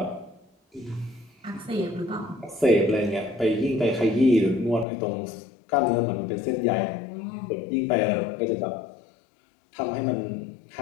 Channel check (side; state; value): right; drops out; at 4.9 s